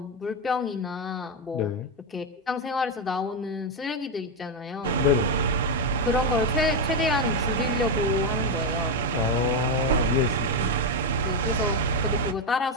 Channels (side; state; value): both; normal; correlation 0.07